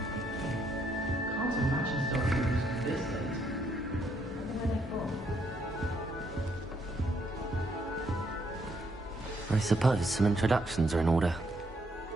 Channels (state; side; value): normal; both; correlation 0.73